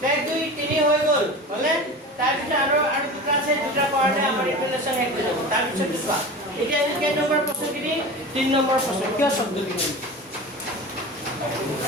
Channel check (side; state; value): both; normal; correlation 0.32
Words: এক দুই তিনি হৈ গ'ল হলে তাৰপিছত আৰু দুটা আছে দুটা কৰাতে আমাৰ ইকুৱেশ্যন শেষ হৈ যাব তাৰপিছত চোৱা এতিয়া কেই নম্বৰ প্ৰশ্নখিনি 3 নম্বৰ প্ৰশ্ন কিয় শব্দ লিখিম